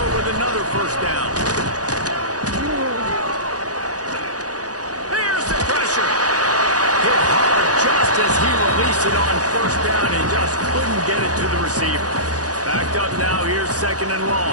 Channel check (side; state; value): left; late; 0.68 ms